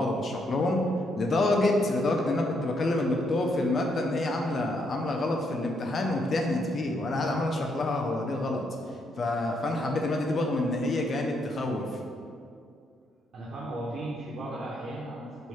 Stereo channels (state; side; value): normal; both; correlation 0.76